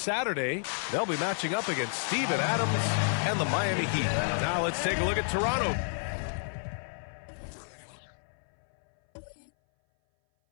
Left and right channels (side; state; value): right; silent; 57 dB below the other